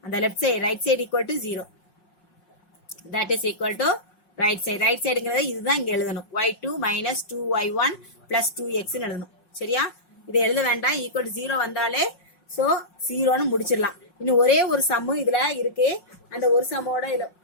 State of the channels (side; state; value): right; late; 5.5 ms